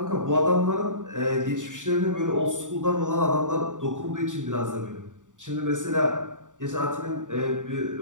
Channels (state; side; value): late; left; 0.87 ms